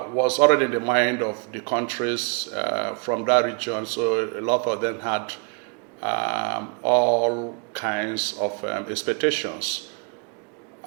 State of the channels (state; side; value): quieter; left; 35.1 dB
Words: already in the mind of the countries from that region. So a lot of them had all kinds of expectations.